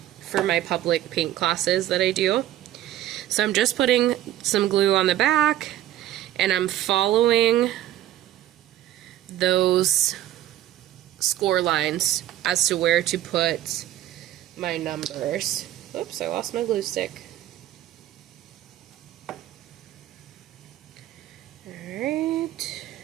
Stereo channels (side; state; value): left; quieter; 13.0 dB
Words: my public paint classes that I do. So I'm just putting some glue on the back, and I'm following those score lines as to where to put my numbers. Oops, I lost my glue stick. Alright.